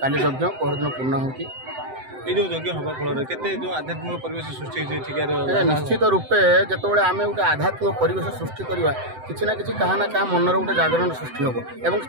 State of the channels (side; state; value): left; late; 7.8 ms